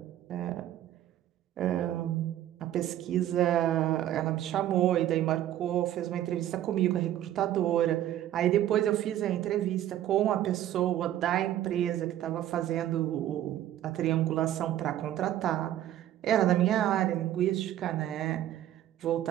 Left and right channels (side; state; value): left; quieter; 12.4 dB